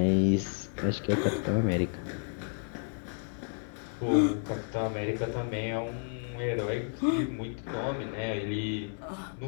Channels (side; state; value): right; silent; 55 dB below the other